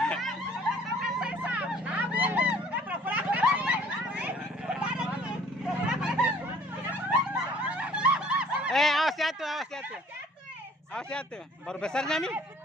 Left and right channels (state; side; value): normal; both; correlation 0.54